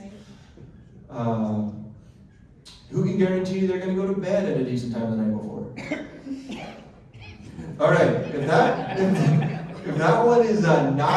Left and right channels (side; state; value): both; identical; correlation 1.00